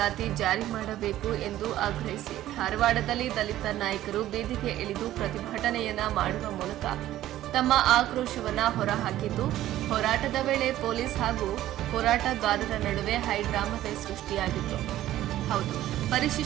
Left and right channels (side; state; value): left; quieter; 13.8 dB